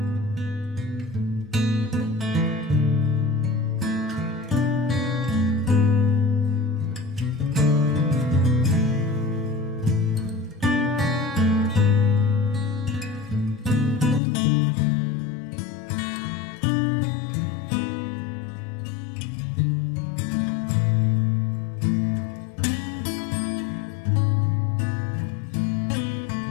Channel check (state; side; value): drops out; right; at 14.2 s